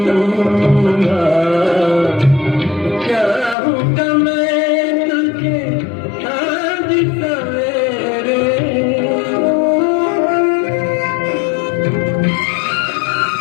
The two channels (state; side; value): drops out; right; at 3.6 s